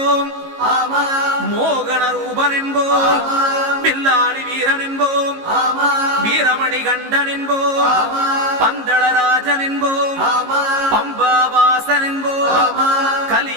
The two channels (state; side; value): late; left; 18 ms